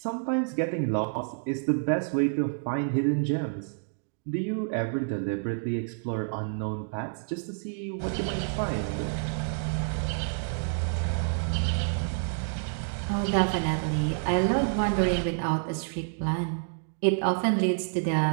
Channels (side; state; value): left; silent; digital silence